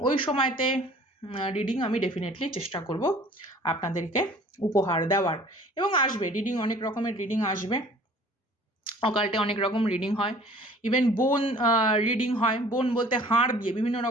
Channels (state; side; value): normal; both; correlation 0.50